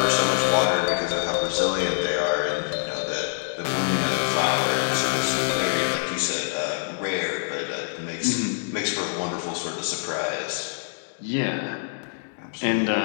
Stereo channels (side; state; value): right; silent; digital silence